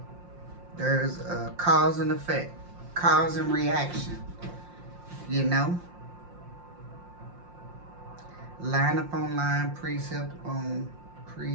There's a cause and effect, cause and reaction, you know? Line upon line, precept upon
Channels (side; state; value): left; late; 5.7 ms